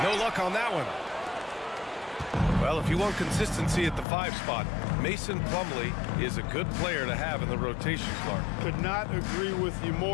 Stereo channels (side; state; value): right; drops out; at 4.0 s